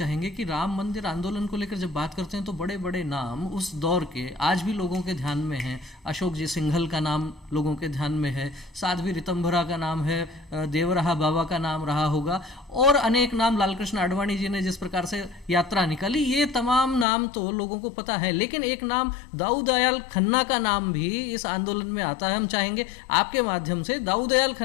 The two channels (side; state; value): right; drops out; at 17.1 s